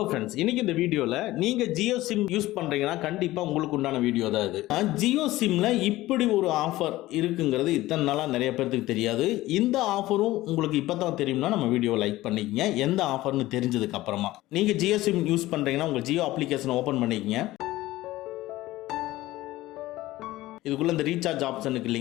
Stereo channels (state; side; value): quieter; right; 17.2 dB